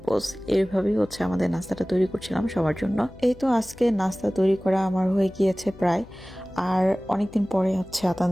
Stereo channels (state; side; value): noise; left; hum, 20 dB below the sound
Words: পোস্ট। এইভাবেই হচ্ছে আমাদের নাস্তাটা তৈরি করছিলাম সবার জন্য। এই তো আজকে নাস্তা তৈরি করা আমার হয়ে গিয়েছে প্রায়। আর অনেকদিন পরে হচ্ছে